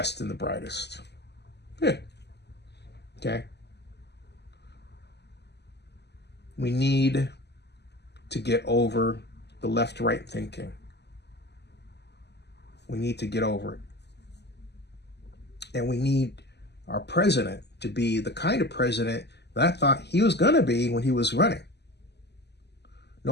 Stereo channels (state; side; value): late; right; 0.49 ms